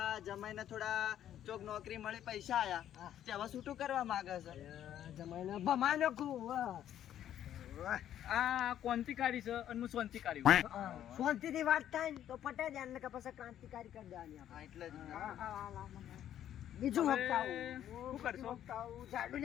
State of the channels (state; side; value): quieter; right; 11.0 dB